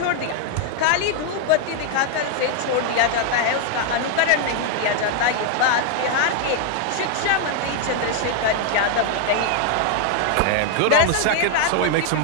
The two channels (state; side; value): different; both; correlation 0.00